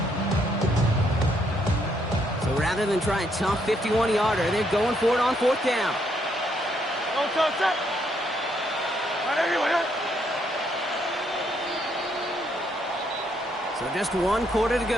Rather than try a tough 51-yarder, they're going for it on 4th down. So just 1 quarter to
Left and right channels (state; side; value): normal; both; correlation 0.73